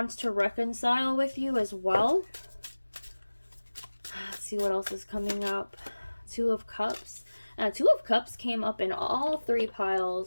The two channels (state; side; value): inverted; both; correlation -1.00